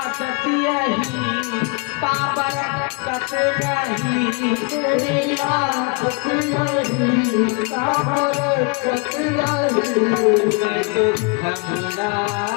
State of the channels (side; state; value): right; quieter; 31.0 dB